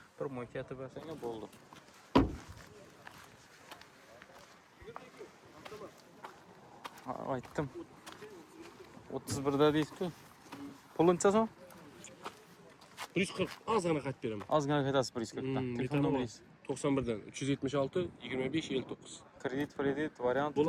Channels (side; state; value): both; identical; correlation 1.00